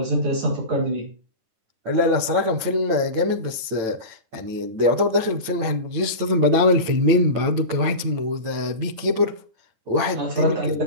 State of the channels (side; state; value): left; late; 9.0 ms